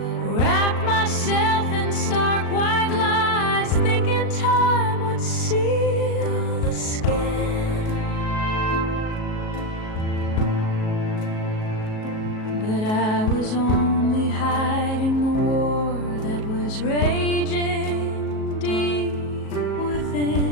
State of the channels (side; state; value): right; late; 37 ms